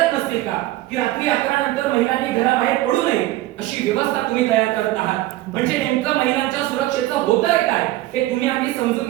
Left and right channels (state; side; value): quieter; left; 16.5 dB